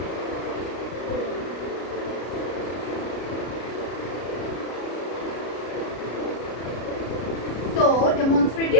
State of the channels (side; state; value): right; late; 33 ms